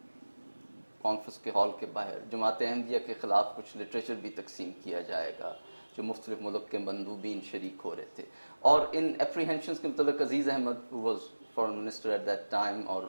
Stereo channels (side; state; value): both; inverted; correlation -1.00